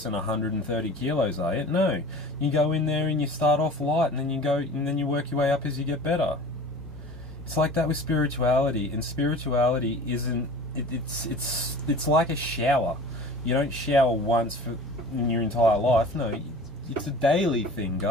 130 kilos, are you? No, you go in there and you start off light, and then you work your way up as you get better. It's like that with spirituality, and spirituality isn't it's like a shower. You don't shower once in your entire life. No, it's a daily thing,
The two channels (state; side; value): normal; both; correlation 0.41